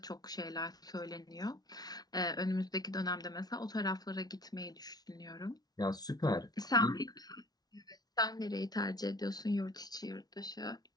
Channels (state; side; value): late; right; 0.19 ms